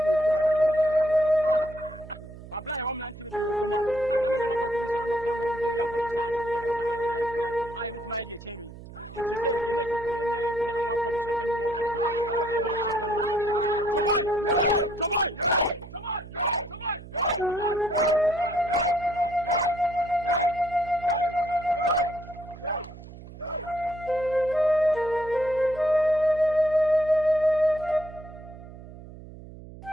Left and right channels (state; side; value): noise; right; hum, 16 dB below the sound